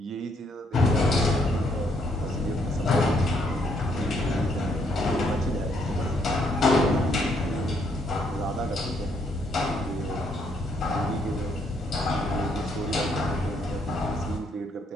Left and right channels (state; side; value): normal; both; correlation 0.71